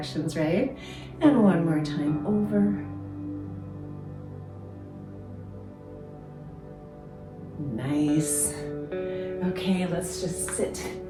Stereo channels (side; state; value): both; identical; correlation 1.00